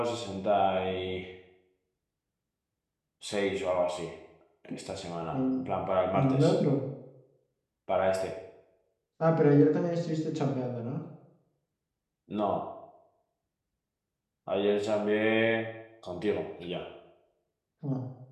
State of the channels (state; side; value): identical; both; correlation 1.00